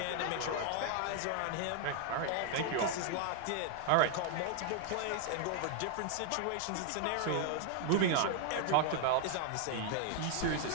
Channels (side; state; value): both; different; correlation 0.00